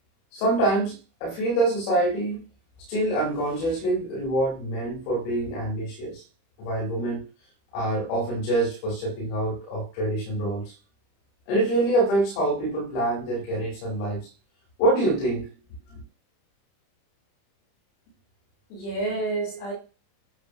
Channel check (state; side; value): late; right; 30 ms